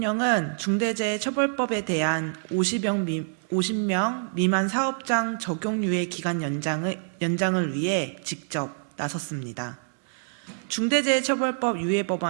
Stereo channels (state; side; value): silent; left; digital silence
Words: 중대재해처벌법에 대한 50명 미만 사업장 적용 유예 기간 연장을 위해 직접 나섰습니다. 중대재해처벌법 유예